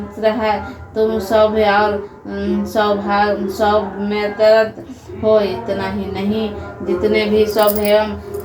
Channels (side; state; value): both; identical; correlation 1.00